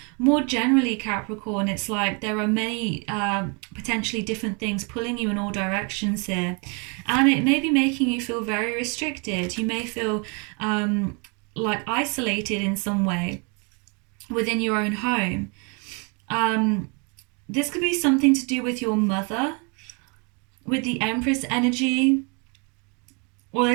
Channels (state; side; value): quieter; left; 34.2 dB